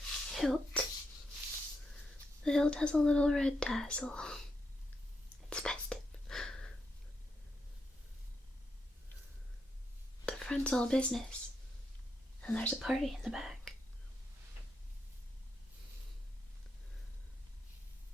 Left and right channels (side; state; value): both; normal; correlation 0.82